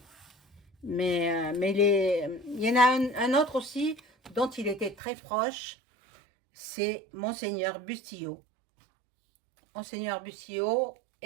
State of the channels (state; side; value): drops out; left; at 5.0 s